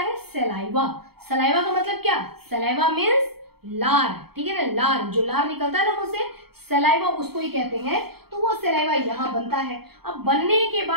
सलाइवा। सलाइवा का मतलब क्या, सलाइवा मीन्स लार। ठीक है ना, लार, जो लार निकलता है ना मुंह से, सलाइवा उसको ही कहते हैं। तो वो सलाइवा यहाँ बनता है। अब बनने के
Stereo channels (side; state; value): left; late; 0.96 ms